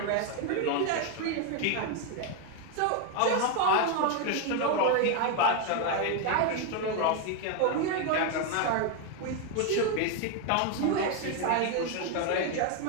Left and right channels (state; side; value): different; both; correlation 0.01